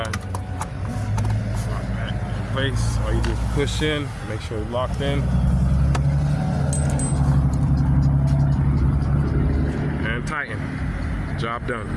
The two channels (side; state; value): both; identical; correlation 1.00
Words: Lock that in place. Or you just push in, make sure it's locked in. And tighten. Job done.